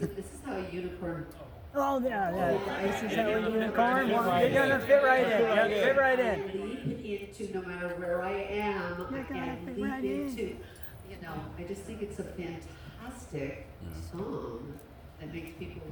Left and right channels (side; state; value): both; identical; correlation 1.00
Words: is how a unicorn. Oh, yeah. This is how a unicorn. You're gonna fit right in. Yeah, fit right in. Leap into no matter where I am. I can leap into. I just think it's a fantastic song that makes people